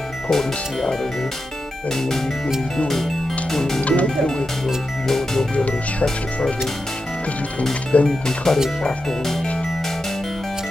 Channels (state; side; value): normal; both; correlation 0.89